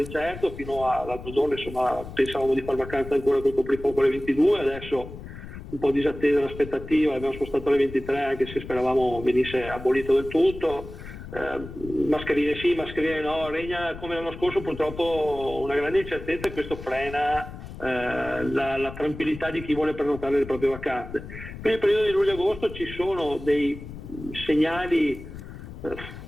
Fino all'altro giorno insomma pensavamo di far vacanza ancora col coprifuoco alle 22, adesso un po' disattesa l'aspettativa, l'abbiamo spostato alle 23 anche se speravamo venisse abolito del tutto. Mascherine sì, mascherine no, regna come l'anno scorso purtroppo una grande incertezza, e questo frena la tranquillità di chi vuole prenotare le proprie vacanze. Per il periodo di luglio-agosto ci sono dei segnali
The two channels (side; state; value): left; noise; rumble, 12 dB below the sound